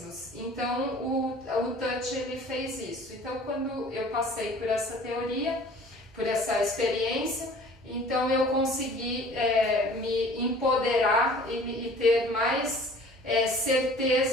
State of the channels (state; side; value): normal; both; correlation 0.48